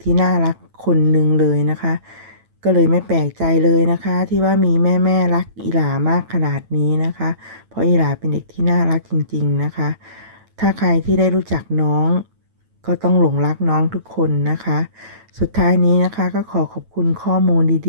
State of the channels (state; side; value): late; left; 9.1 ms